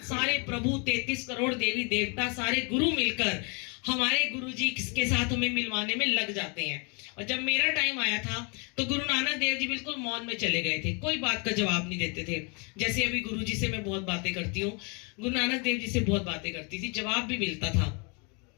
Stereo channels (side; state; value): right; quieter; 33.4 dB